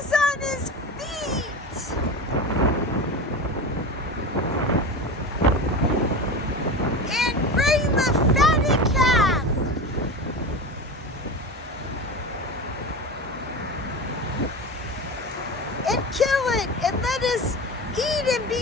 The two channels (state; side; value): normal; both; correlation 0.27